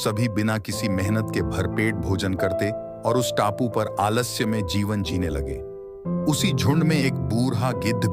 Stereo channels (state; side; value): identical; both; correlation 1.00